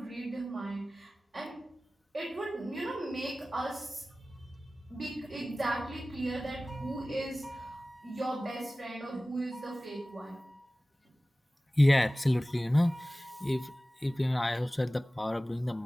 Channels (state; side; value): normal; both; correlation 0.97